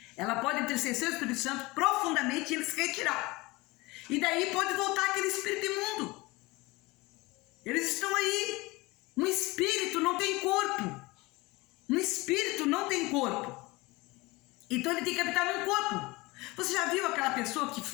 ela pode entristecer o Espírito Santo profundamente e ele se retirar. E daí pode voltar aquele espírito imundo. Eles estão aí. Um espírito não tem corpo. Um espírito não tem corpo. Então ele tem que habitar num corpo. Você já viu aquela pessoa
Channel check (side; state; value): right; quieter; 22.6 dB